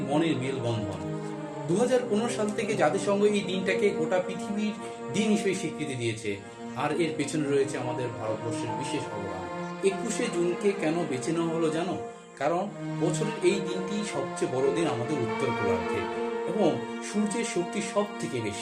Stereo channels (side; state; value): both; identical; correlation 1.00